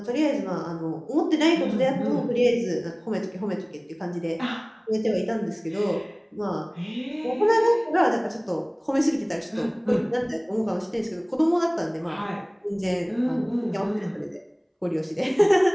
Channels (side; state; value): both; identical; correlation 1.00